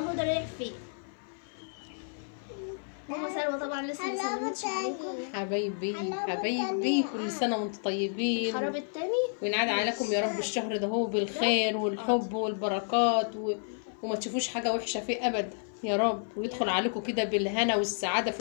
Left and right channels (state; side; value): silent; right; 55 dB below the other